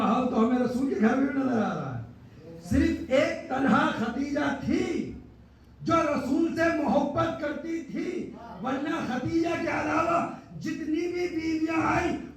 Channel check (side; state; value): both; identical; correlation 1.00